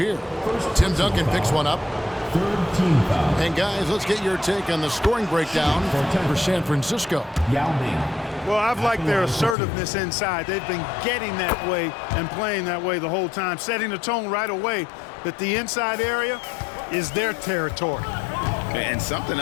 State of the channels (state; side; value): drops out; right; at 9.6 s